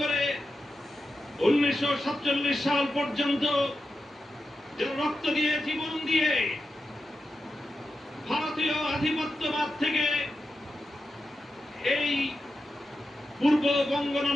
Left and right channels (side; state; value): both; normal; correlation 0.90